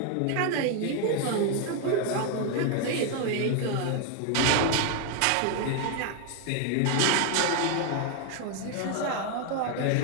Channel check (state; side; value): different; both; correlation 0.00